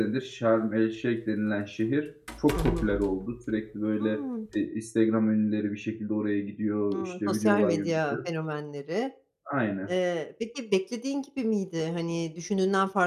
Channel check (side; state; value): both; identical; correlation 1.00